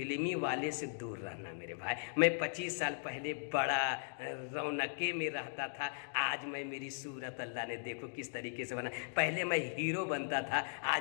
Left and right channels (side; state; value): right; silent; digital silence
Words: والے سے دور رہنا میرے بھائی. میں 25 سال پہلے بڑا رونقے میں رہتا تھا. آج میں میری صورت اللہ نے دیکھو کس طریقے سے بنا. پہلے میں ہیرو بنتا تھا,